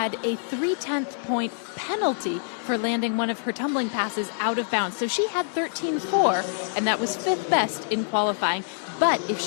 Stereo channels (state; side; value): silent; right; digital silence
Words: a 3/10 point penalty for landing one of her tumbling passes out of bounds. So she had 13.4, and that was 5th best in qualifying. But if